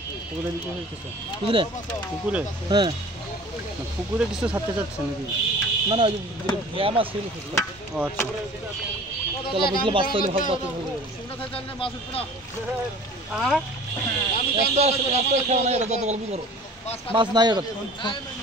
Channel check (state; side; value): normal; both; correlation 0.44